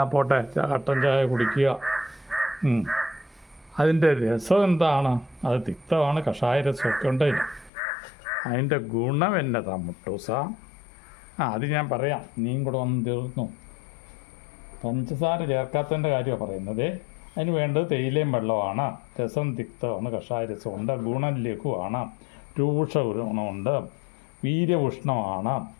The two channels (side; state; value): right; drops out; at 7.7 s